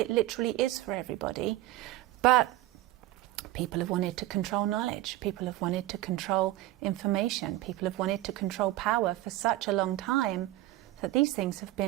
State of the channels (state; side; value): quieter; left; 16.1 dB